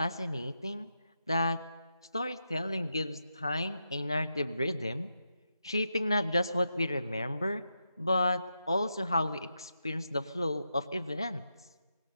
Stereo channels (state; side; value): inverted; both; correlation -0.86